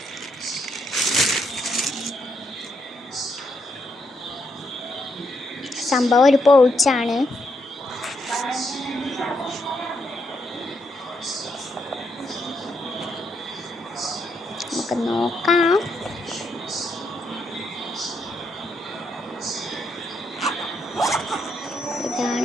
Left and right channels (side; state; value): both; normal; correlation 0.78